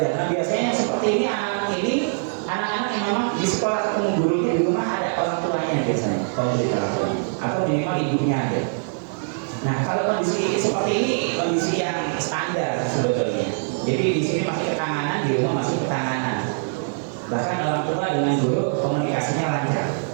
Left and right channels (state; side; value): silent; left; 63 dB below the other